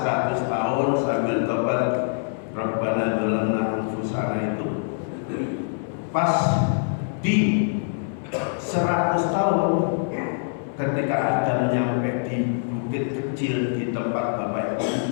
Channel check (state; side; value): silent; right; 60 dB below the other